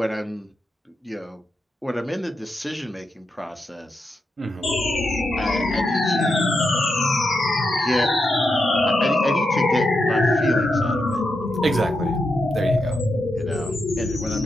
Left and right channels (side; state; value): both; normal; correlation 0.85